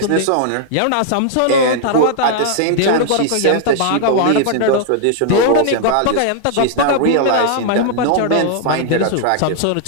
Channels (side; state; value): both; different; correlation -0.01